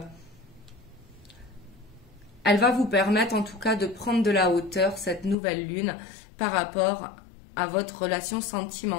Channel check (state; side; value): drops out; right; at 5.4 s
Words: elle va vous permettre en tout cas de prendre de la hauteur, cette nouvelle lune, par rapport à votre relation